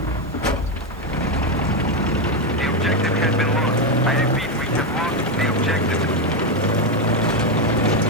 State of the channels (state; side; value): noise; right; hiss, 29 dB below the sound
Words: The objective has been lost. I repeat, we have lost the objective.